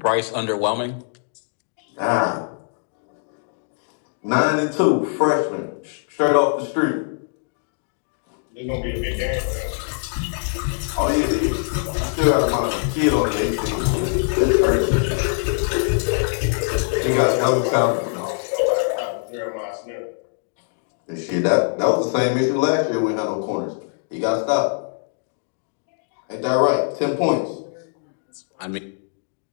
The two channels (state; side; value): silent; right; digital silence